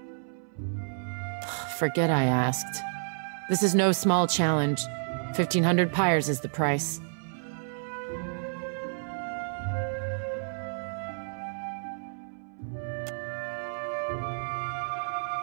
Forget I asked. This is no small challenge. 1,500 pyres is the price.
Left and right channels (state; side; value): silent; left; 58 dB below the other